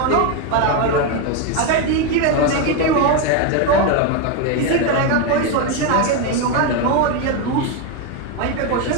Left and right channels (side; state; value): both; different; correlation 0.02